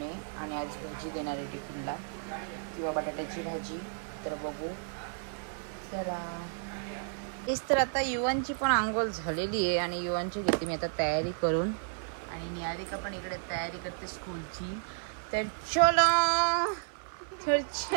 आणि आज भाजी देणार आहे टिफिनला, किंवा बटाट्याची भाजी. तर बघू चला. तेच तर आता युवांची पण आंघोळ झालेली आहे आणि युवांची घेते मी आता तयारी करून, आणि निहारिका पण इकडे तयारी करते स्कूलची. तर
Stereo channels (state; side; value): silent; left; 56 dB below the other